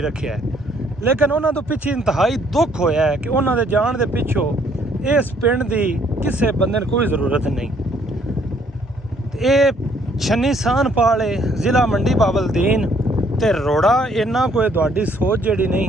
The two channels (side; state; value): both; normal; correlation 0.65